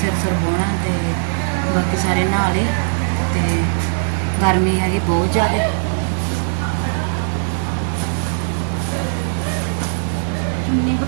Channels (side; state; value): left; silent; 64 dB below the other